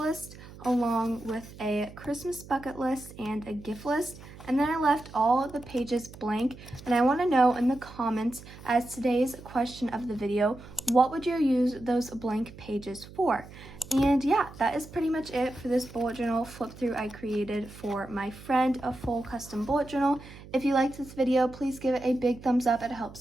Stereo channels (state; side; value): noise; right; hum, 17 dB below the sound